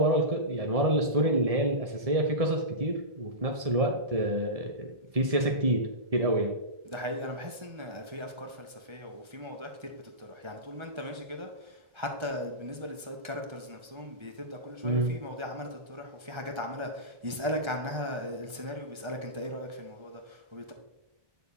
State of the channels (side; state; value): left; late; 1.3 ms